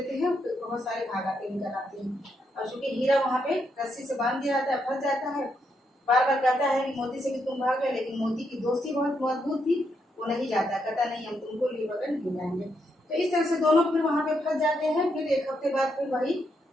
हैं, बहुत सारे भाग आते निकल आते हैं। और चूंकि हीरा वहाँ पे रस्सी से बांध दिया जाता है, फंस जाता है। बार बार कहता है कि मोती से कि तुम भाग गए, लेकिन मोती की दोस्ती बहुत मजबूत थी, वो नहीं जाता, कहता नहीं, हम तुमको लिए बगैर नहीं जाएंगे। तो इस तरह से दोनों फिर वहां पे फंस जाते हैं। फिर एक हफ्ते बाद फिर वही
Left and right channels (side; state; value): both; normal; correlation 0.79